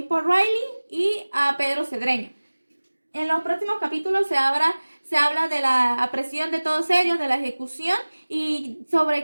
Riley y a Pedro Cedreño. En los próximos capítulos se habla de la apresión de todos ellos, de la ejecución y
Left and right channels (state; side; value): inverted; both; correlation -1.00